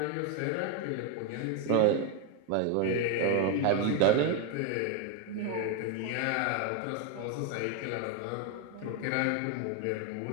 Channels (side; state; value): both; different; correlation 0.01